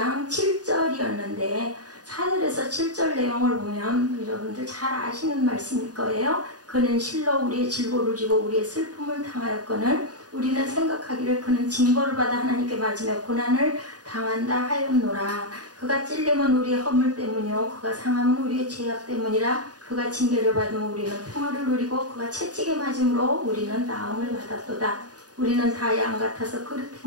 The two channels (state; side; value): late; left; 0.68 ms